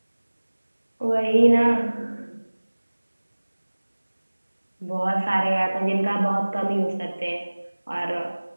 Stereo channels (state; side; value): inverted; both; correlation -1.00